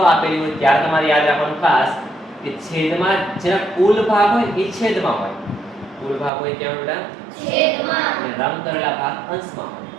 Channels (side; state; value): left; drops out; at 6.3 s